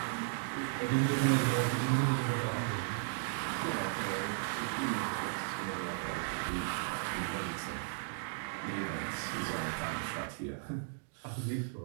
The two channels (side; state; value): left; silent; digital silence